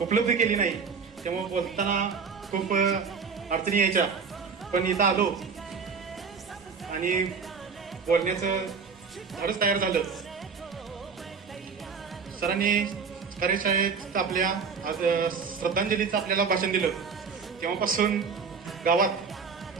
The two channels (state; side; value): quieter; left; 5.6 dB